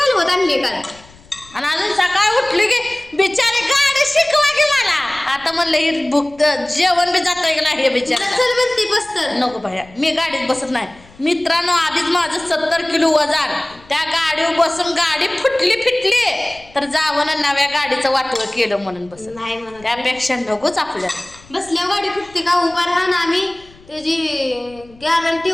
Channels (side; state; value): left; noise; rumble, 25 dB below the sound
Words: आणली का. आणि अजून सकाळ उठली की बिचारी गाडी शिकवा की मला. आता म्हणलं ही भुक्त जेवण बी जात हे बिचारी चल म्हणती बसत. नको बाया मी गाडीत बसत नाही. मित्रांनो आधीच माझं 70 किलो वजन. त्या गाडीवर बसून गाडी फुटली फिटली तर जावं नव्या गाडीचं वाटवं केलं म्हणून बस नाही म्हणून. त्यापेक्षा नकोच आपल्याला. बसल्या गाडी फुटते का उभा राहा ना. आम्ही त्याची गॅरंटी